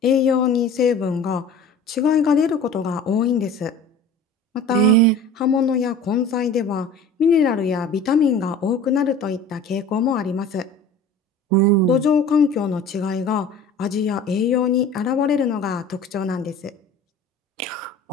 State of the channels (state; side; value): quieter; right; 3.1 dB